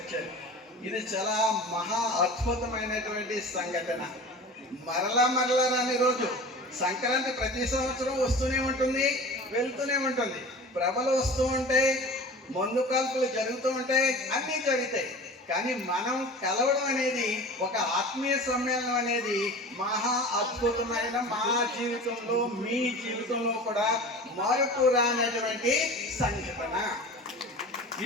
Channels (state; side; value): normal; both; correlation 0.37